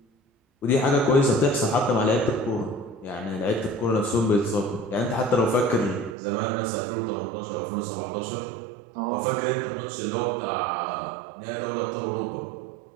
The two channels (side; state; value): left; drops out; at 6.2 s